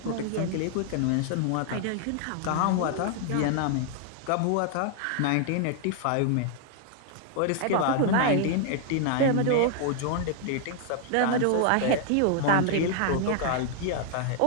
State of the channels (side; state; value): both; different; correlation 0.00